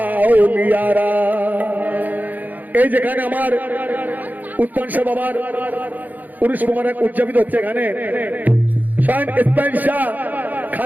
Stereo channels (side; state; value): left; late; 0.083 ms